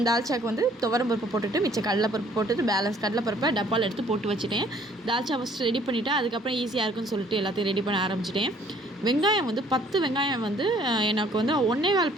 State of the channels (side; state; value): both; normal; correlation 0.59